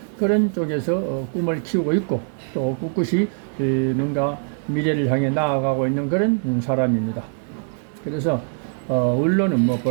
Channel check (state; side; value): silent; left; 64 dB below the other